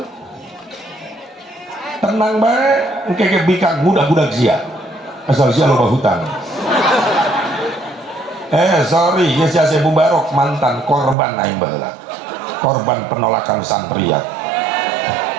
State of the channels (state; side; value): drops out; left; at 11.2 s